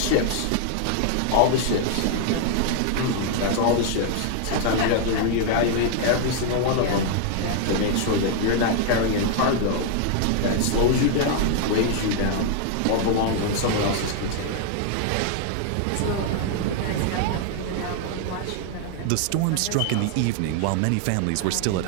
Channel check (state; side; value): different; both; correlation 0.00